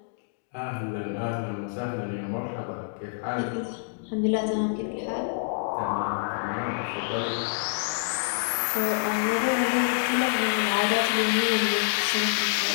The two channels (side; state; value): right; silent; digital silence